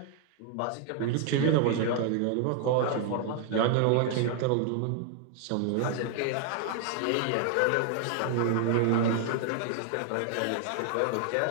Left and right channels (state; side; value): different; both; correlation 0.00